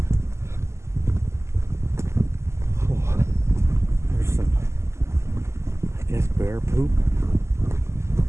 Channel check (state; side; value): late; left; 0.13 ms